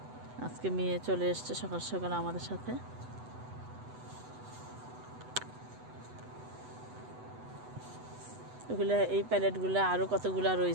আজকে মেয়ে চলে এসছে সকাল সকাল আমাদের সাথে। এগুলা এই প্যালেটগুলো আরও কতগুলা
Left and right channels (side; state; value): left; late; 8.0 ms